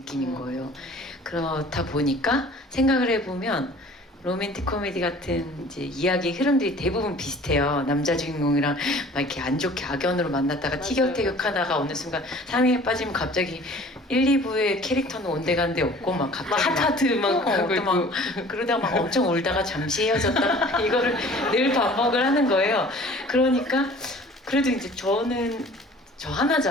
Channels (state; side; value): normal; both; correlation 0.48